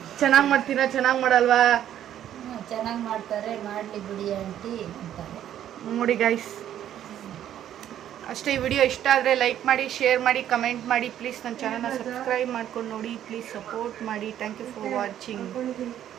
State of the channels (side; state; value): left; quieter; 11.0 dB